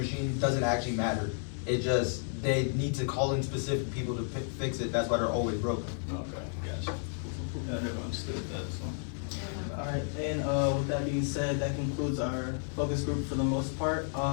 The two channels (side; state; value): right; silent; 56 dB below the other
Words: doesn't actually matter. It just, they need to call in specific people to fix it. That's why they're always broken. Okay, gotcha. Yeah, I never understood that, so. Alright, and with that being said, that concludes our focus group for the most part.